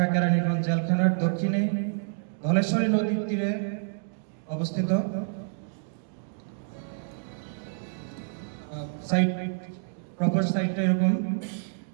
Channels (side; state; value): left; silent; digital silence